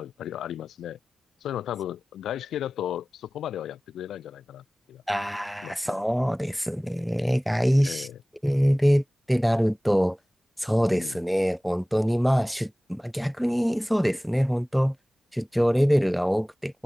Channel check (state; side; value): normal; both; correlation 0.98